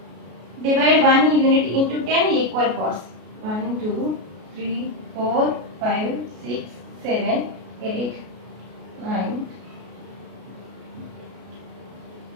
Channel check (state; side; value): late; left; 33 ms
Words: Divide 1 unit into 10 equal parts. 1, 2, 3, 4, 5, 6, 7, 8, 9.